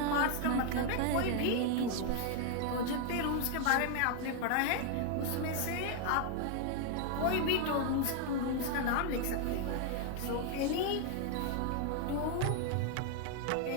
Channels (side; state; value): both; different; correlation 0.00